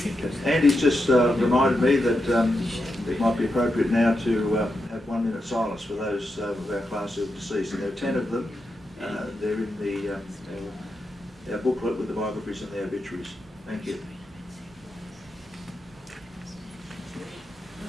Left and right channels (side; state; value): both; normal; correlation 0.86